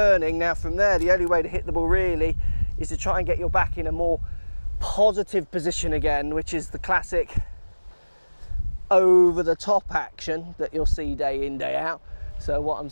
Now from there, the only way to hit the ball really is to try and get your back in a more positive position again, which is the classic over the top action that you'll see day in, day out. So what I'm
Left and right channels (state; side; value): inverted; both; correlation -1.00